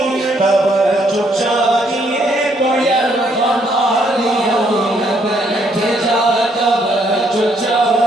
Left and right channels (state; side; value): normal; both; correlation 0.70